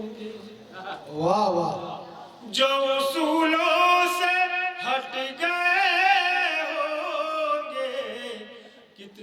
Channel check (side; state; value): both; identical; correlation 1.00